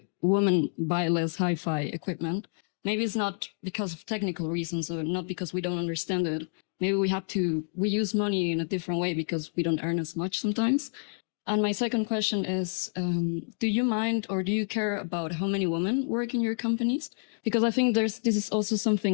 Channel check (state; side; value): silent; right; digital silence